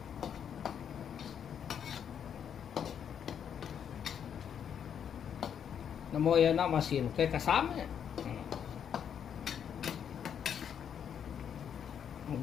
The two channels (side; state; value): right; quieter; 8.3 dB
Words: Namo ya na masin kay kasama.